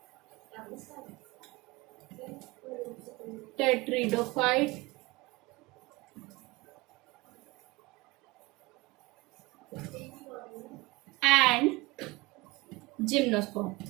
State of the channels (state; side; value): quieter; left; 22.4 dB